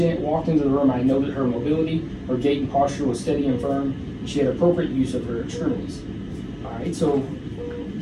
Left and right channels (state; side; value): identical; both; correlation 1.00